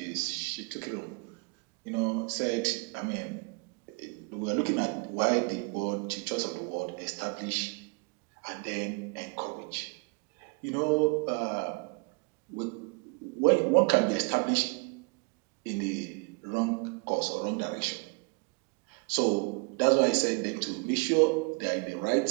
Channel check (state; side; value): quieter; left; 33.0 dB